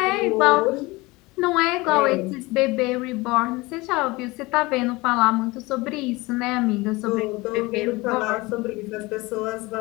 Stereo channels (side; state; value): right; quieter; 22.5 dB